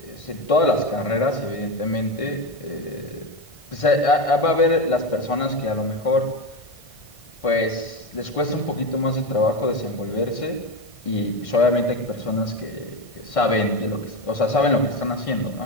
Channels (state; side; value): late; right; 1.6 ms